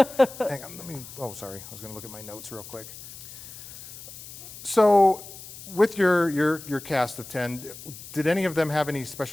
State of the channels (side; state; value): left; noise; hiss, 15 dB below the sound